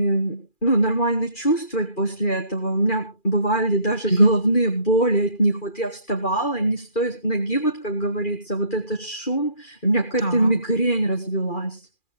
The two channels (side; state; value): right; late; 2.4 ms